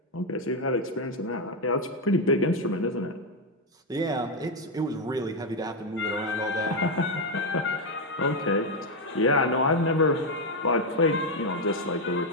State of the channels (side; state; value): both; normal; correlation 0.04